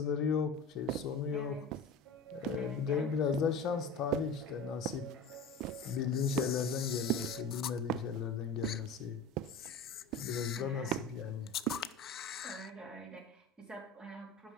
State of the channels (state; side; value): quieter; right; 3.0 dB